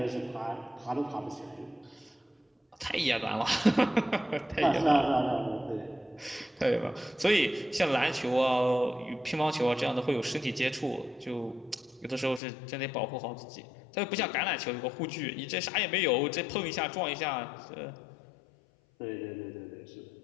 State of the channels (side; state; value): right; drops out; at 12.4 s